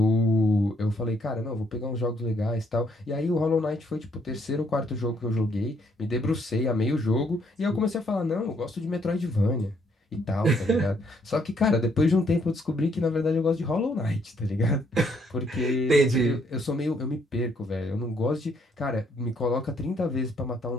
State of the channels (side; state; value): both; normal; correlation 0.70